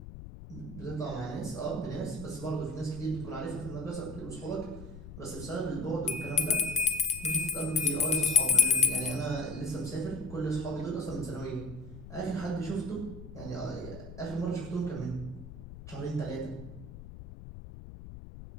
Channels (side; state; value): left; noise; rumble, 13 dB below the sound